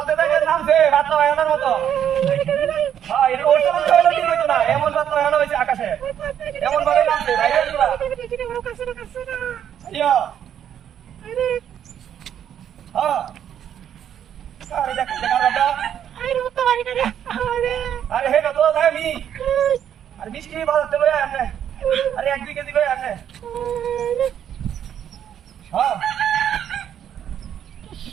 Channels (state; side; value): quieter; left; 9.6 dB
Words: थे क्या नाम से हाथ लगाया ना वो तो। हाँ ये और सब तो वाला नहीं तो ना ये मन बात लगाया ना वैसे आकाश है। ये मन वाले नाम से भाई ये दूरा। यो। हाँ। अरे जगह रहा। अरे है ना तो है मी। अरे बीच की बात चलो यार हमने। अरे एक भी कैसी कोई हमने। हाँ